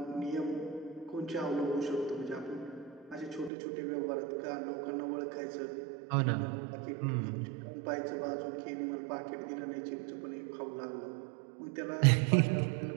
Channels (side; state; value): left; drops out; at 3.5 s